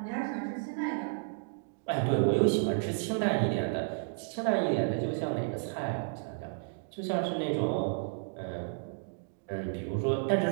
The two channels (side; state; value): left; silent; digital silence